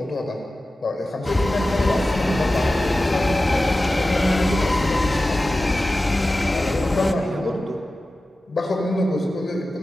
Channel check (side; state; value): both; normal; correlation 0.95